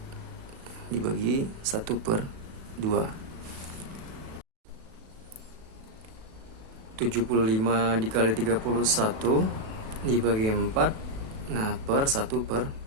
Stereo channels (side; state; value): left; late; 37 ms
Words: dibagi 1/2. 75 dikali 31 dibagi 4, nah per